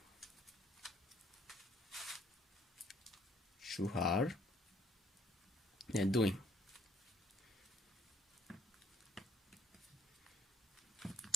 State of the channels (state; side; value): normal; both; correlation 0.65